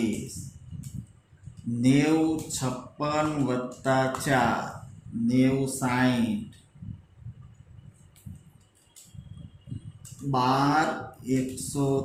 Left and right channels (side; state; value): both; identical; correlation 1.00